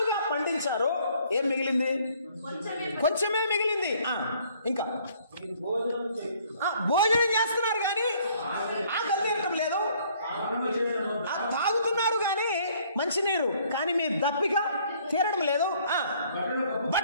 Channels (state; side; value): inverted; both; correlation -0.61